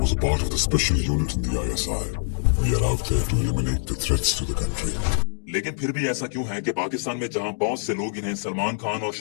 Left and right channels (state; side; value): silent; right; digital silence